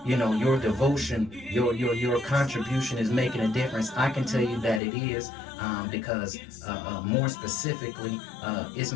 you know, your devotion, your contribution is making a difference, I can tell you that it is, because more specifically, it's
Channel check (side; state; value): right; drops out; at 4.8 s